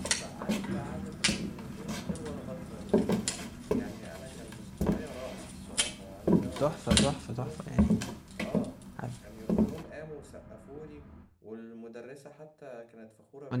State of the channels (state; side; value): identical; both; correlation 1.00